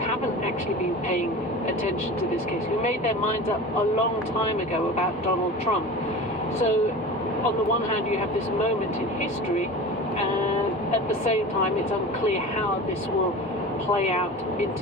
actually been paying attention to this case, who made their minds up a long time ago about Donald Trump. So on the one hand you have this moment in history, and at the same time it's unclear how this will play out in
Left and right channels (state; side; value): normal; both; correlation 0.33